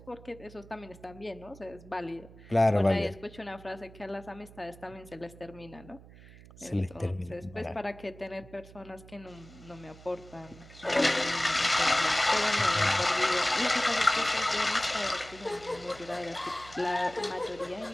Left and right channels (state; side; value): noise; right; hum, 20 dB below the sound